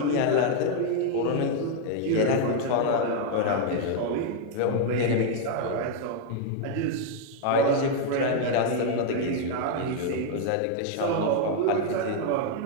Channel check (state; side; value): different; both; correlation 0.00